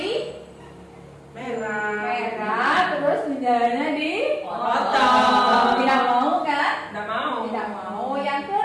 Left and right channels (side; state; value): both; identical; correlation 1.00